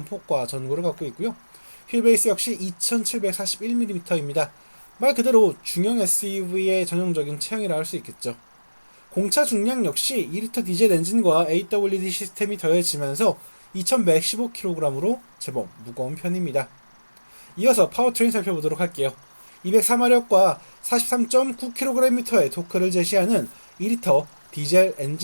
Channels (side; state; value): both; inverted; correlation -1.00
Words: 전고를 갖고 있고요. 휠베이스 역시 2741mm입니다. 말 그대로 중형 SUV의 전형적인 체형이라 할 수 있겠죠. 공차 중량 역시 2리터 디젤 엔진과 AWD 시스템이 더해지면서 2115kg으로 제법 무거운 편입니다. 이어서 파워트레인 살펴보도록 할게요. 204마력과 43.9kgm의 토크를 제시하는 2리터 디젤